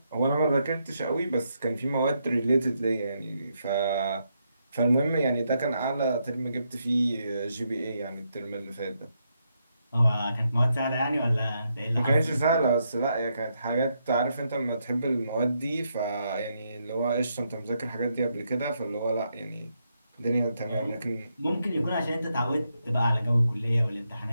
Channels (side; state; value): both; inverted; correlation -0.80